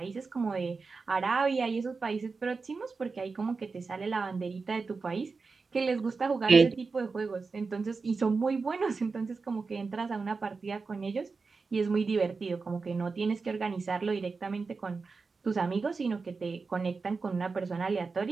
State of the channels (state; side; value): quieter; left; 4.4 dB